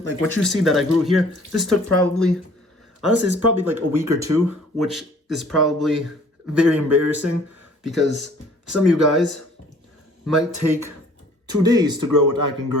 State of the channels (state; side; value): normal; both; correlation 0.55